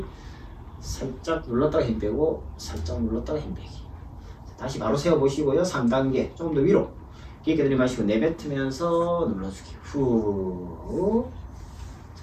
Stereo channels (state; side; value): identical; both; correlation 1.00